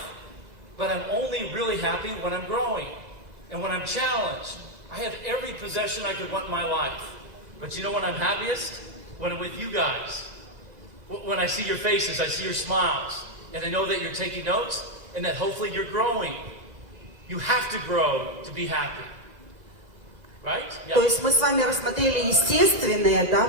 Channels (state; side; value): late; left; 2.0 ms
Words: But I'm only really happy when I'm growing and when I'm challenged. I have every possession I could want in my life. But you know when I'm happiest? When I'm with you guys. When I see your faces, I see your smiles. And I know that you're taking notes and that hopefully you're growing. You have to grow to be happy. Right? Yeah. То есть мы с вами рассмотрели естественные, да,